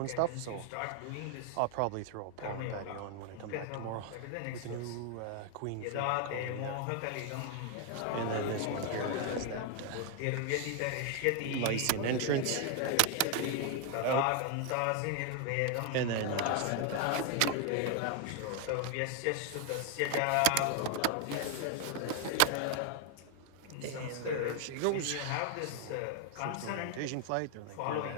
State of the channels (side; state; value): both; different; correlation 0.00